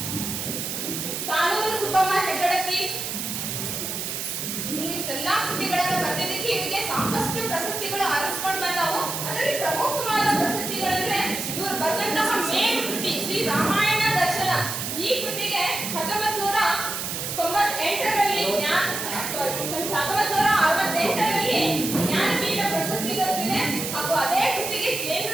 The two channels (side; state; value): right; noise; hiss, 4 dB below the sound